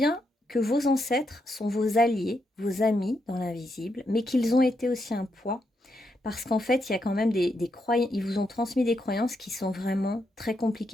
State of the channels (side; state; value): both; normal; correlation 0.81